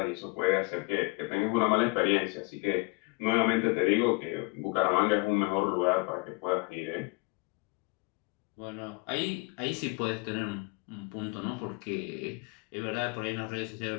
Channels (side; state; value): right; quieter; 28.9 dB